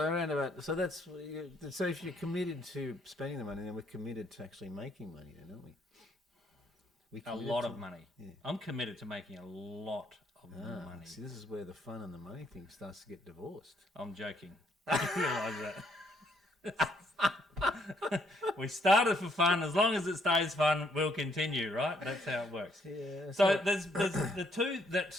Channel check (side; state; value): both; normal; correlation 0.70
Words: about. So that's. So if you're committed to spending the money, then we're committed to actually making money, then, aren't we? A lot of money. Yeah. I'm committed to making a lot of money. See, this is where the fun and the money thing starts to get divorced. I'm joking. You realise that. We started for fun. As long as it stays fun, we'll continue, right? That's how it works. Yeah. So there's the two that